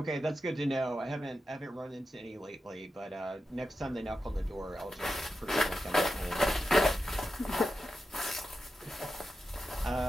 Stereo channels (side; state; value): both; normal; correlation 0.90